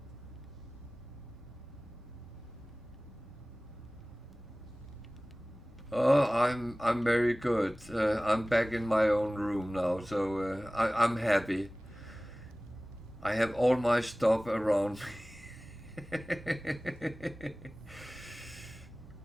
Oh, I'm very good. I'm back in my own room now, so I'm happy. I have all my stuff around me.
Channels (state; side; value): normal; both; correlation 0.98